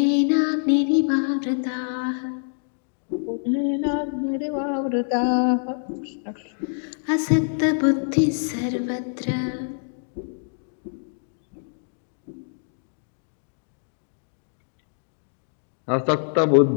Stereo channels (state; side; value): silent; right; digital silence